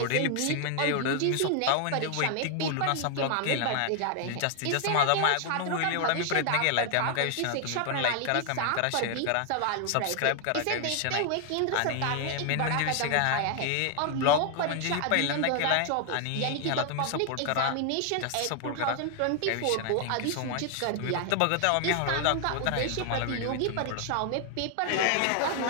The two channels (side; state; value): both; different; correlation 0.00